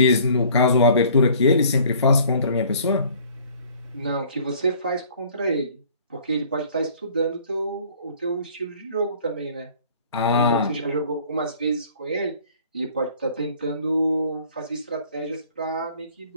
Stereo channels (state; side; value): inverted; both; correlation -0.53